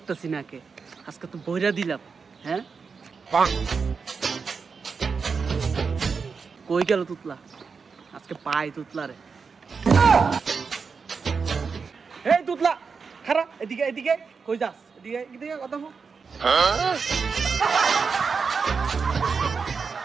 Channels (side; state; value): left; quieter; 5.3 dB